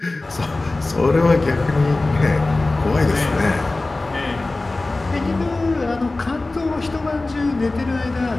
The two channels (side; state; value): right; quieter; 3.1 dB